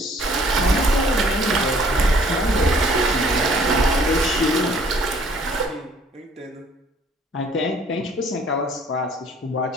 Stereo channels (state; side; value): normal; both; correlation 0.58